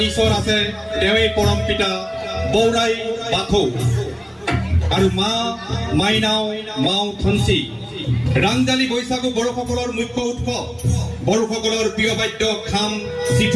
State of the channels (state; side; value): identical; both; correlation 1.00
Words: ঈশ্বৰ আছে, তেওঁৱেই পৰম পিতা বৌৰাই বাথৌ। আৰু মা মাইনাও, মাও থঞ্চি। ৰাংজালি বৈশাগু বড়োসকলৰ মুখ্য উৎসৱ। বড়োসকলৰ প্ৰিয় বাদ্য খাম,